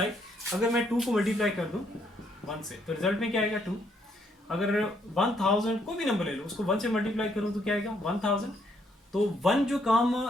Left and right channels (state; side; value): normal; both; correlation 0.71